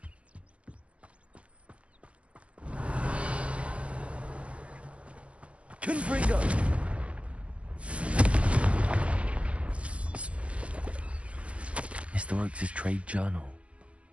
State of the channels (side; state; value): left; late; 0.062 ms